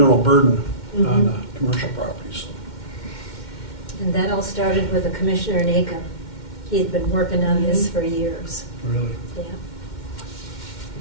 burden on commercial properties. And that all started with a commissioner in Aiken. He had been working on this for years. Really? Yeah.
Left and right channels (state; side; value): late; right; 2.1 ms